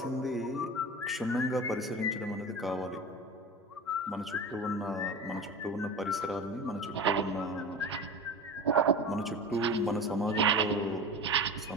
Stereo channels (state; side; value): normal; both; correlation 0.32